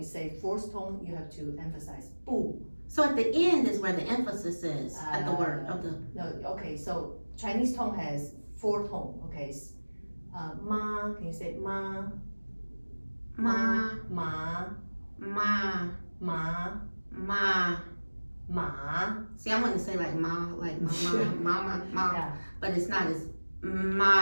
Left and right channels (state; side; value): inverted; both; correlation -1.00